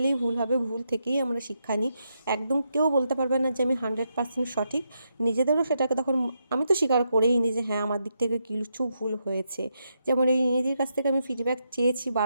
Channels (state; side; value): inverted; both; correlation -0.82